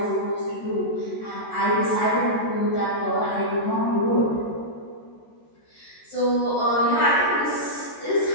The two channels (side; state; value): right; late; 13 ms